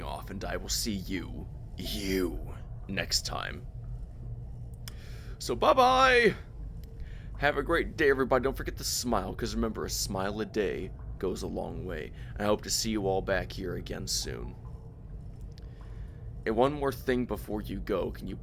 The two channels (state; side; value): identical; both; correlation 1.00